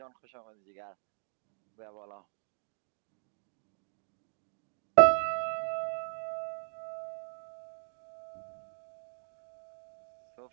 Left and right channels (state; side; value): silent; left; digital silence